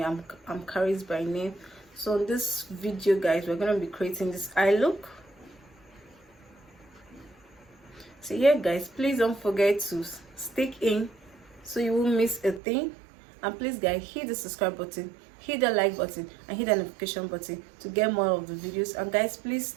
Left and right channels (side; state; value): left; drops out; at 12.6 s